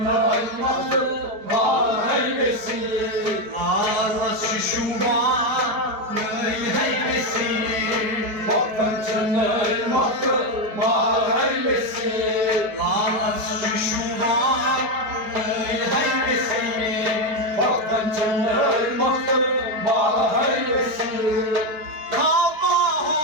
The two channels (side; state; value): left; late; 4.7 ms